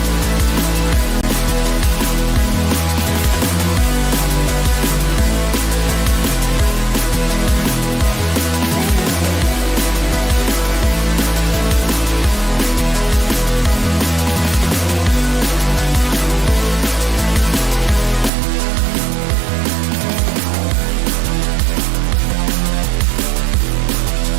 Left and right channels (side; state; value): left; drops out; at 18.3 s